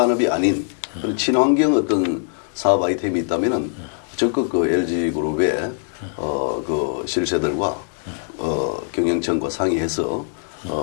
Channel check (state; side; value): silent; right; digital silence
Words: 아닌 그런 친환경 어떤 사업 아이템이 있다면은 적극 그 LG그룹의 그 실세들과 경영청과 상의해서